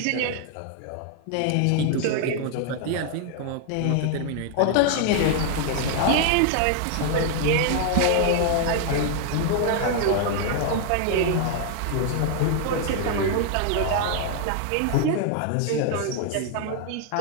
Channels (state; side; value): different; both; correlation 0.00